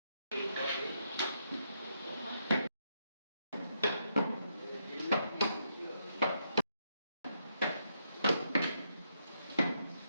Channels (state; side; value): inverted; both; correlation -0.78